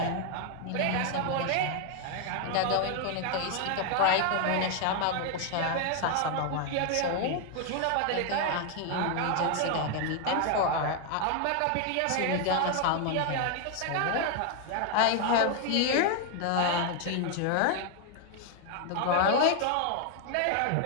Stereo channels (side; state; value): both; different; correlation 0.00